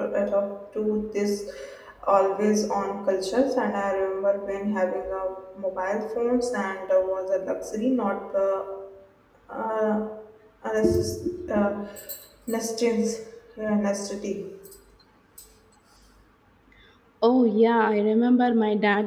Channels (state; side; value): identical; both; correlation 1.00